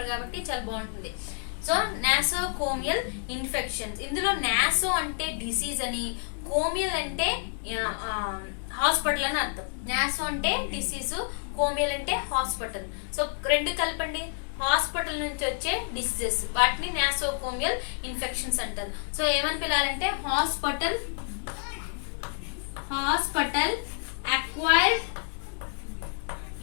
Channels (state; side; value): silent; right; 59 dB below the other